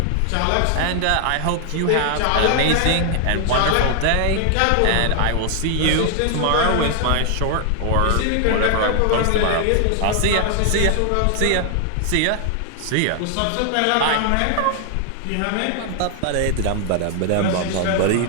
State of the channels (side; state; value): both; different; correlation 0.00